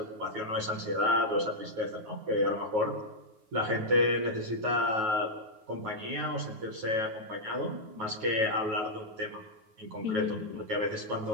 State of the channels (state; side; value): late; left; 9.3 ms